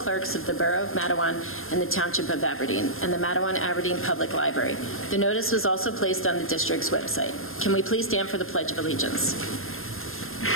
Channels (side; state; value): right; late; 0.60 ms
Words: of the Borough of Matawan and the Township of Aberdeen and the Matawan-Aberdeen Public Library. The notice was also placed on the district's website. Can we please stand for the Pledge of Allegiance?